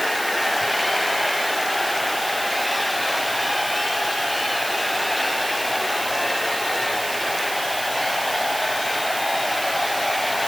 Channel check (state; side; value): noise; right; hiss, 7 dB below the sound